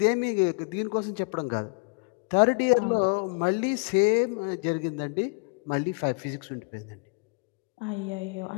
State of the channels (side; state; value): right; quieter; 33.9 dB